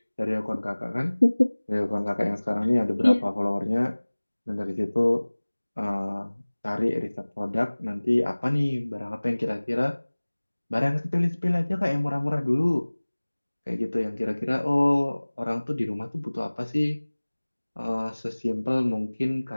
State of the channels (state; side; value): inverted; both; correlation -1.00